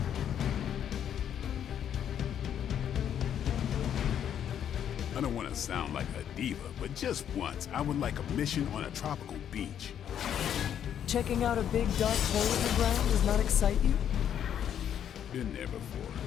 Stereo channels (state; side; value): quieter; right; 9.4 dB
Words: I don't want to sound like a diva, but just once, I would like a mission on a tropical beach. Checking out a big dark hole in the ground does not excite you? Been there before.